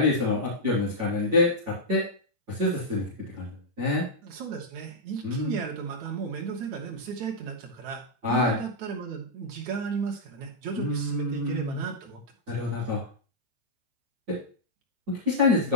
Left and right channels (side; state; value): left; late; 9.1 ms